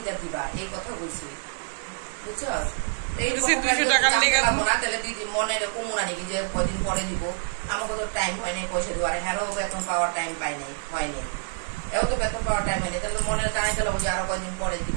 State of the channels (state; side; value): silent; left; 60 dB below the other